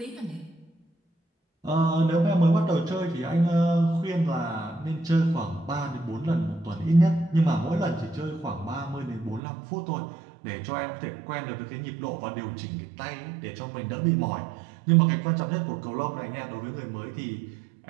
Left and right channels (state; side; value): drops out; left; at 9.4 s